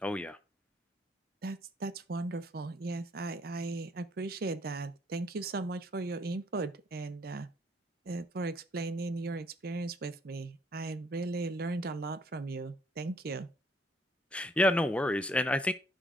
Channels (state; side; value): normal; both; correlation 0.65